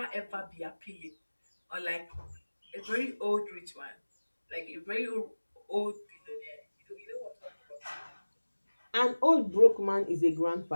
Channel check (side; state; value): both; inverted; correlation -1.00